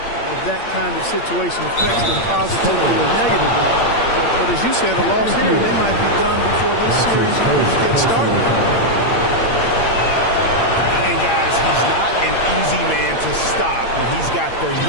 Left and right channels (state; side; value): late; right; 8.7 ms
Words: that kind of situation affects them positively or negatively. But as you said, a loss here, they might be done before this series even gets started. And guys, he's not an easy man to stop when he's got the